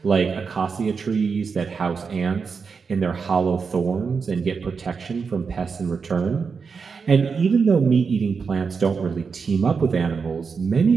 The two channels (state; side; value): quieter; left; 5.4 dB